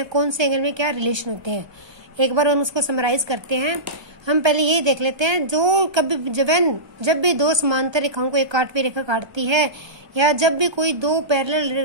कौन से एंगल में क्या रिलेशन होते हैं। एक बार हम उसको समराइज करते हैं। हम पहले यही देख लेते हैं, जो कभी जब भी दो समांतर रेखाओं को एक काटवी रेखा काटती है या जब भी कोई दो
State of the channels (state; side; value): late; left; 1.2 ms